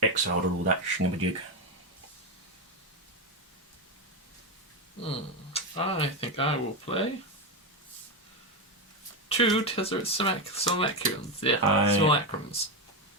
exiled or all that shinabajig. I think I will play 2 Tezzeret Simulacrums. Yeah, Simulacrums.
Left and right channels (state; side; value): normal; both; correlation 0.11